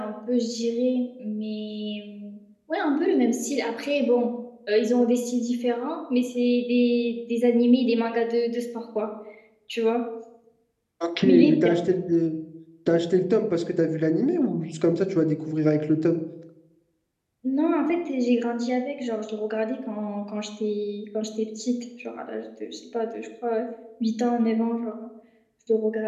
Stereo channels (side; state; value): both; identical; correlation 1.00